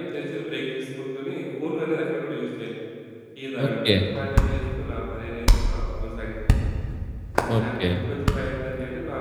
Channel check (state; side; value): identical; both; correlation 1.00